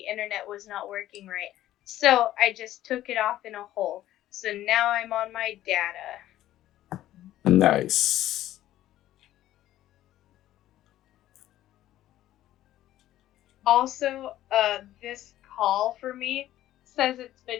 internet was not working right. So I just took it off in a hole. So now I'm on my data. Nice. Also, this call for me says it's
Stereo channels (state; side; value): quieter; right; 13.7 dB